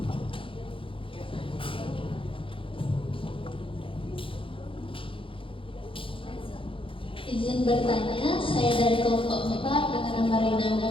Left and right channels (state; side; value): late; right; 0.25 ms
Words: Izin bertanya, saya dari kelompok 4 dengan nama